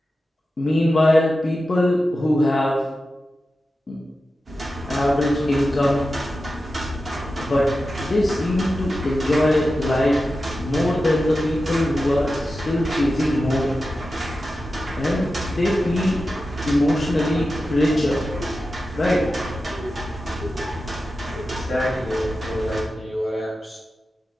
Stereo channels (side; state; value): both; normal; correlation 0.92